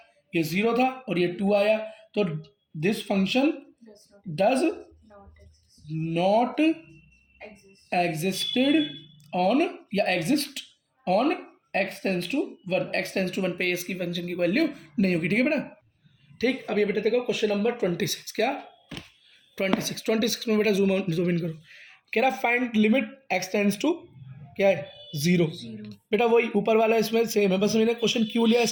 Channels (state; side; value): identical; both; correlation 1.00